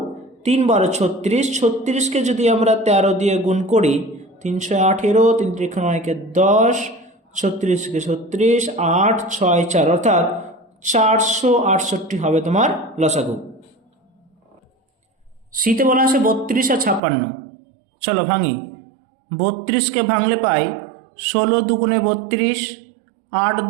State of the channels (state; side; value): drops out; left; at 17.0 s